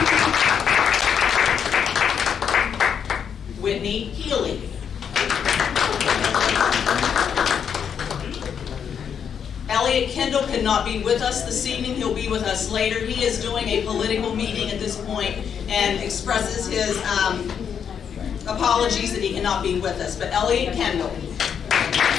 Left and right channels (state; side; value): quieter; right; 7.6 dB